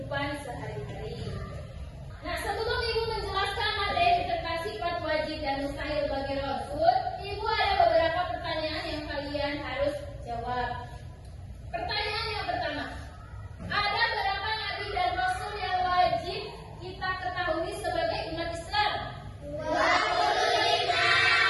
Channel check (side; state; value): both; identical; correlation 1.00